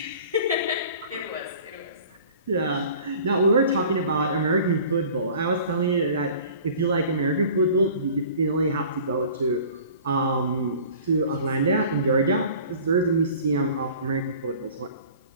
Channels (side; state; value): both; inverted; correlation -0.46